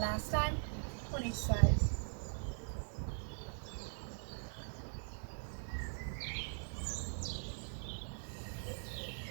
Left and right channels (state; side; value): silent; left; digital silence